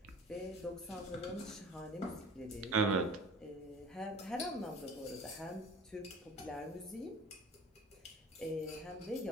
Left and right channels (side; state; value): both; normal; correlation 0.43